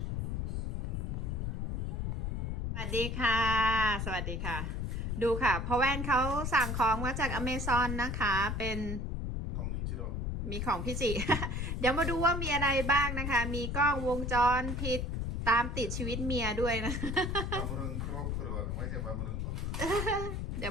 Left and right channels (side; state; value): left; noise; rumble, 2 dB below the sound